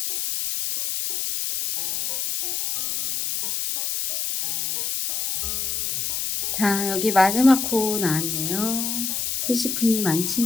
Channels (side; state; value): left; noise; hiss, 1 dB below the sound